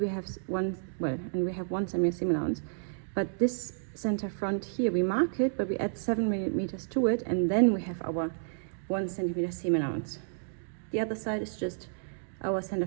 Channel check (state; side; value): silent; left; digital silence